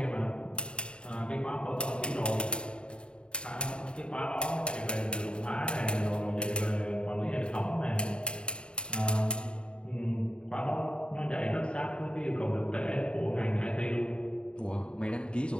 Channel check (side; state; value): right; late; 0.052 ms